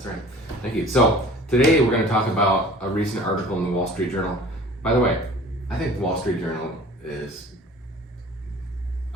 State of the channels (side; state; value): both; normal; correlation 0.46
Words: right. Thank you. So today we're going to talk about a recent article in the Wall Street Journal. By the way, I think the Wall Street Journal is